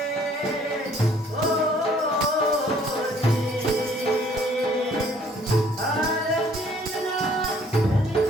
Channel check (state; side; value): normal; both; correlation 0.59